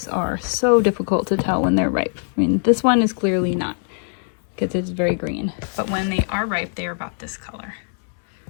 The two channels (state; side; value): silent; right; 58 dB below the other